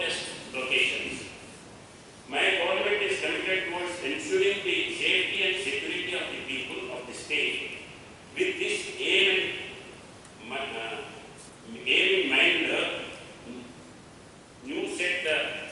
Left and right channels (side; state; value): both; identical; correlation 1.00